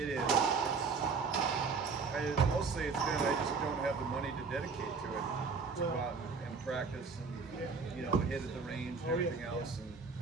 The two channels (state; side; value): quieter; left; 4.8 dB